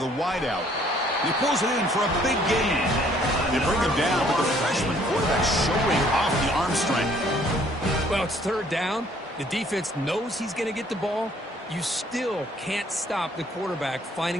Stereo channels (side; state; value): both; normal; correlation 0.61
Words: wideout. He pulls it in for a big gain. They bring him down, but the freshman quarterback showing off the arm strength. Well, it's third down. The defense knows he's going to get the ball. You still can't stop the quarterback